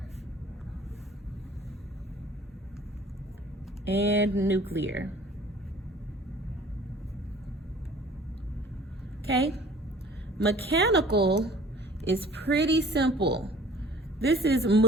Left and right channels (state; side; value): normal; both; correlation 0.50